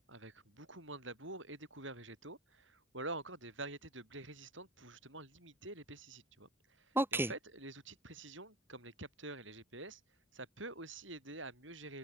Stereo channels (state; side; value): normal; both; correlation 0.30